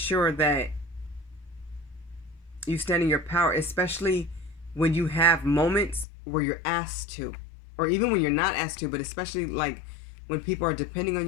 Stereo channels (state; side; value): drops out; right; at 6.1 s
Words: that you stand in your power, especially when you have moments where you're asked to, or even when you're not asked to, but especially like when people are depending on